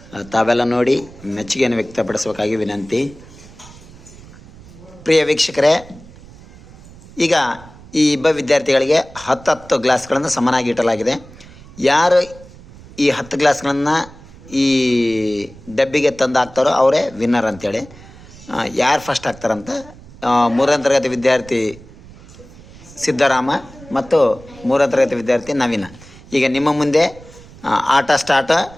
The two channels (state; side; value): noise; right; rumble, 20 dB below the sound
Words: ತಾವೆಲ್ಲ ನೋಡಿ ಮೆಚ್ಚುಗೆಯನ್ನು ವ್ಯಕ್ತಪಡಿಸಬೇಕಾಗಿ ವಿನಂತಿ. ಪ್ರಿಯ ವೀಕ್ಷಕರೇ, ಈಗ ಈ ಇಬ್ಬ ವಿದ್ಯಾರ್ಥಿಗಳಿಗೆ 10 ಗ್ಲಾಸ್ಗಳನ್ನು ಸಮನಾಗಿ ಇಡಲಾಗಿದೆ. ಯಾರು ಈ 10 ಗ್ಲಾಸ್ಗಳನ್ನು ಈ ಡಬ್ಬಿಗೆ ತಂದು ಹಾಕ್ತಾರೋ ಅವರೇ ವಿನ್ನರ್ ಅಂತೇಳಿ. ಯಾರು ಫಸ್ಟ್ ಆಗ್ತಾರಂತ 3ನೇ ತರಗತಿ ವಿದ್ಯಾರ್ಥಿ ಸಿದ್ದರಾಮ ಮತ್ತು 3ನೇ ತರಗತಿ ವಿದ್ಯಾರ್ಥಿ ನವೀನ. ಈಗ ನಿಮ್ಮ ಮುಂದೆ ಆಟ ಸ್ಟಾರ್ಟ್.